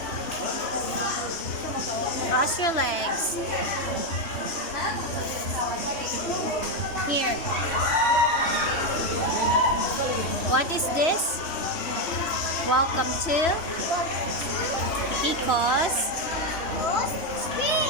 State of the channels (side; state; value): right; late; 3.0 ms